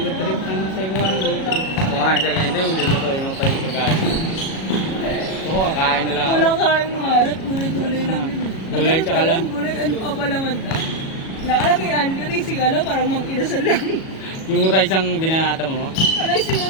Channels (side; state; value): right; late; 37 ms